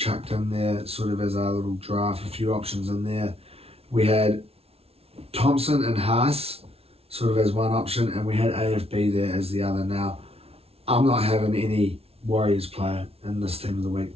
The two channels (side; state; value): left; late; 0.29 ms